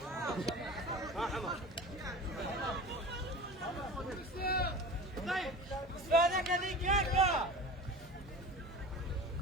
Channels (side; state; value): both; normal; correlation 0.35